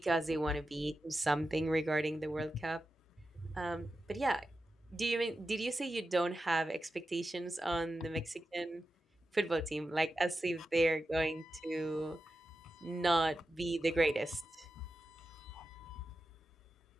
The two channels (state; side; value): normal; both; correlation 0.91